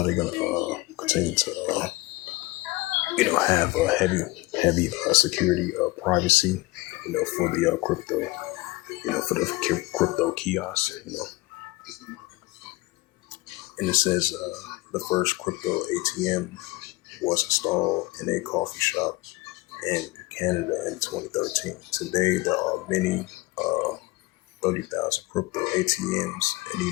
they're gonna continue to, have a heavy security privacy, for the crypto, for the crypto kiosks. And it says the first crypto ATM was installed in a coffee shop in Canada in 2013. Today, there are many 30,000 crypto ATMs in the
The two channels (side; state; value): right; quieter; 21.3 dB